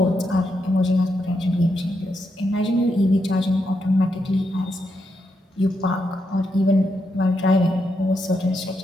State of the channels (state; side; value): normal; both; correlation 0.82